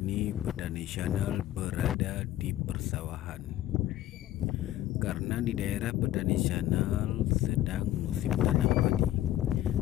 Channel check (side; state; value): right; quieter; 13.6 dB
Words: Petani Channel berada di persawahan. Karena di daerah Petani Channel sedang musim tanam padi.